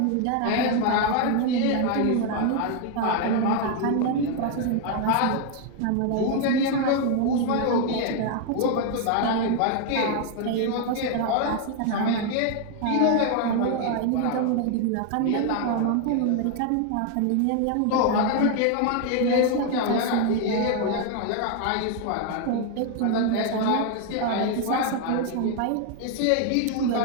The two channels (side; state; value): both; different; correlation 0.00